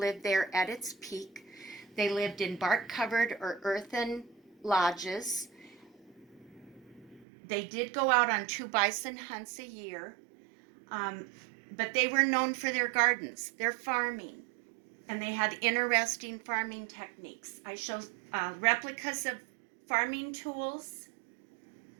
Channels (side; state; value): left; drops out; at 7.2 s